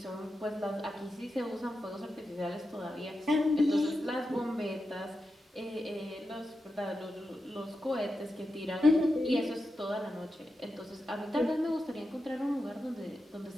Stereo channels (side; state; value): both; normal; correlation 0.89